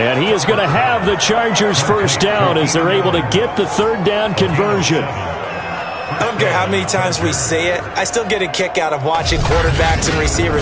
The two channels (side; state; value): both; identical; correlation 1.00